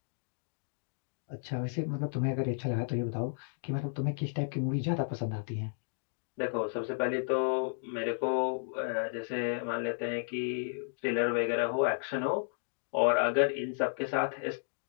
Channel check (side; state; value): right; silent; digital silence